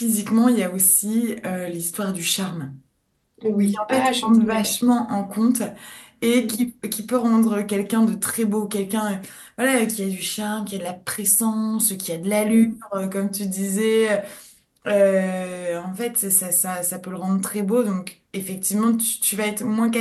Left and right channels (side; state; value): both; identical; correlation 1.00